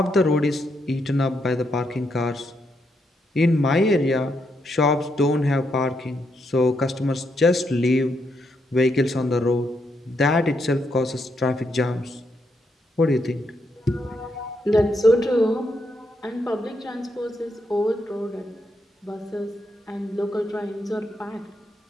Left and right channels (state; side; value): normal; both; correlation 0.79